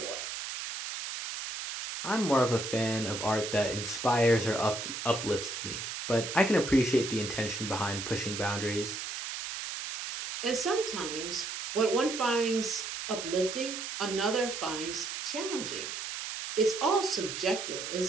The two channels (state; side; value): noise; right; hiss, 6 dB below the sound